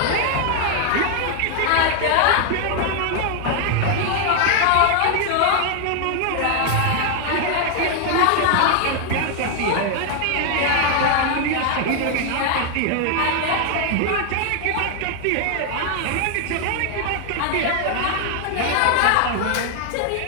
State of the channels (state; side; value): different; both; correlation 0.00